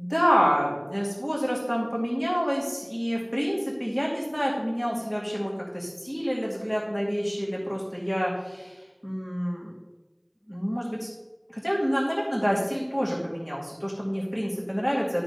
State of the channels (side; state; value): both; identical; correlation 1.00